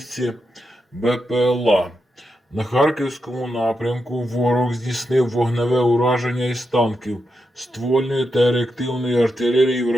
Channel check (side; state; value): both; normal; correlation 0.86